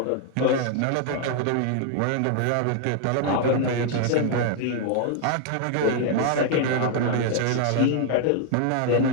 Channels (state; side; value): different; both; correlation 0.00